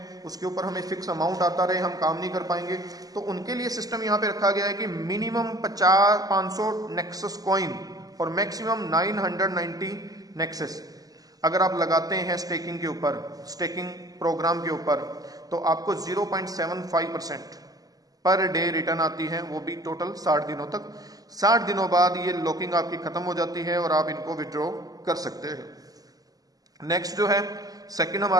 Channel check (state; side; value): late; left; 0.18 ms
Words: उसके ऊपर हमें फिक्स अमाउंट आता रहे, हम काम नहीं कर पाएंगे। तो उनके लिए सिस्टम यहाँ पे रखा गया है कि मिनिमम 500 नेक्सस कॉइन और मैक्सिमम 990 नेक्सस अगर आप लगाते हैं स्टेकिंग के ऊपर, स्टेकिंग प्रोग्राम के ऊपर, तो आपको 0.75% पर डे रिटर्न आती है, वो भी टोटल 60 दिनों तक। 60 दिनों बाद ये लॉकिंग आपकी खत्म हो जाती है और आप इनको विड्रॉ कर सकते हैं। नेक्स्ट जो है सेकंड